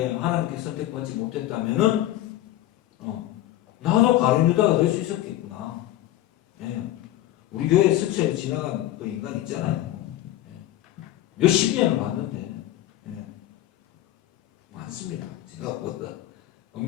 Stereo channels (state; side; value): quieter; right; 14.2 dB